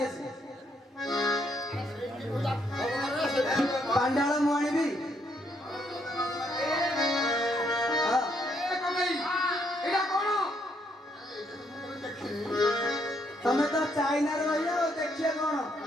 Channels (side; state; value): both; normal; correlation 0.73